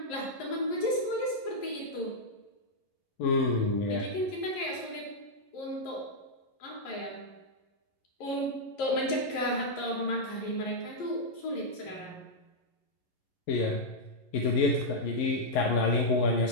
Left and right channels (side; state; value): right; late; 11 ms